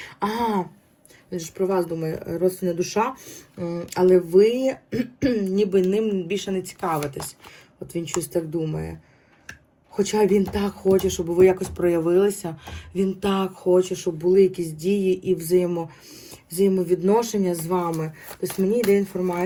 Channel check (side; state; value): both; identical; correlation 1.00